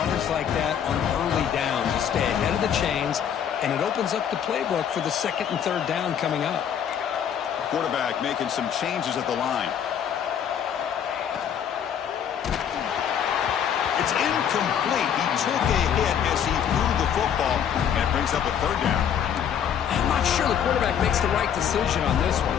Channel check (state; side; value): quieter; right; 8.6 dB